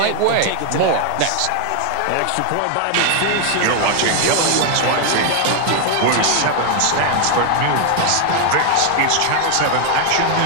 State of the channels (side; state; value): both; different; correlation 0.00